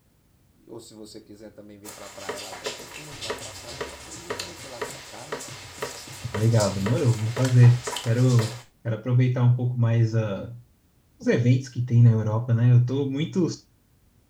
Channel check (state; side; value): identical; both; correlation 1.00